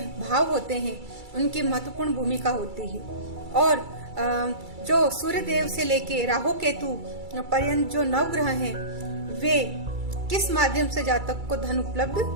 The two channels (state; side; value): late; left; 2.3 ms